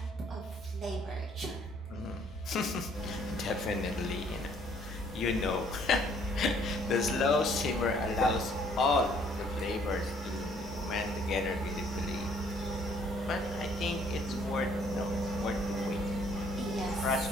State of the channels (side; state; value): both; normal; correlation 0.62